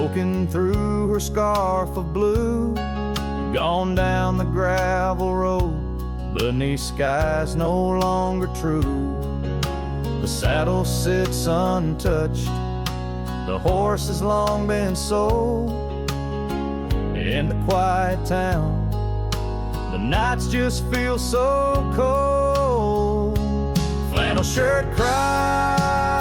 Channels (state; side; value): identical; both; correlation 1.00